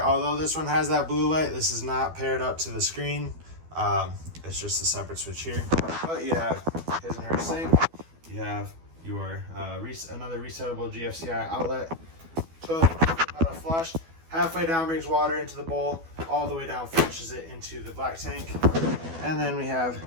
Although this one has that blue light, this is not paired up to the screen. It's just a separate switch here. But you have his and her sink. You have your another resettable GFCI outlet. Toilet auto flush. Halfway down brings water into the bowl. All the way down flushes it into the black tank. And then we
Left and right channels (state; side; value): late; left; 12 ms